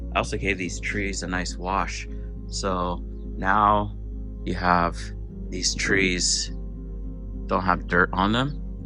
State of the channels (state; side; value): identical; both; correlation 1.00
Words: I also gave these trees a nice wash. So now you have these trees don't have dirt on them,